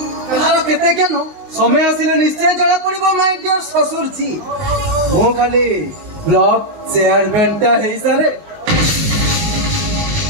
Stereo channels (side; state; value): left; late; 19 ms